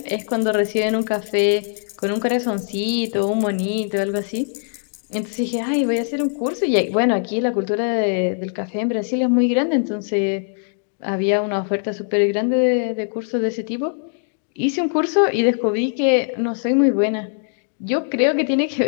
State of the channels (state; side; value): silent; right; 61 dB below the other